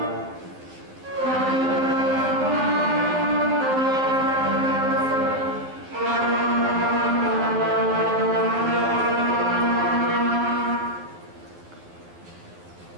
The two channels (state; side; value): late; left; 11 ms